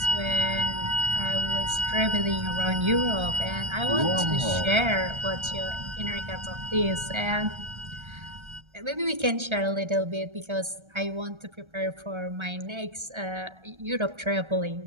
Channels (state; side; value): late; left; 1.3 ms